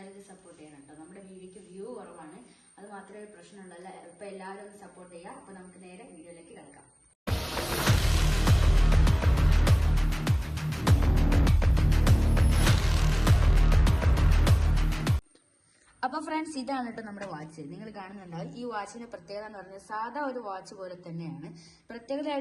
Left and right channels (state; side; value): identical; both; correlation 1.00